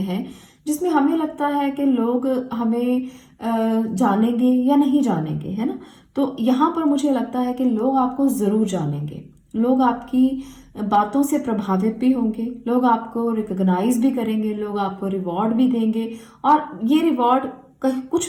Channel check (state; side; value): identical; both; correlation 1.00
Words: हैं जिसमें हमें लगता है कि लोग हमें जानेंगे या नहीं जानेंगे, है ना। तो यहाँ पर मुझे लगता है कि लोग आपको जरूर जानेंगे, लोग आपकी बातों से प्रभावित भी होंगे, लोग आपको रिकॉग्नाइज भी करेंगे, लोग आपको रिवॉर्ड भी देंगे। और ये रिवॉर्ड